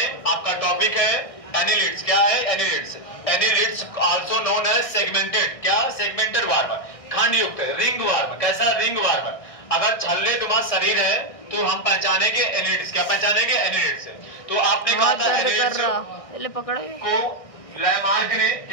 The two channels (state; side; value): late; right; 1.6 ms